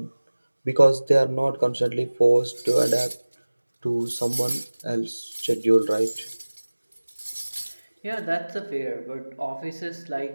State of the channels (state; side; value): inverted; both; correlation -1.00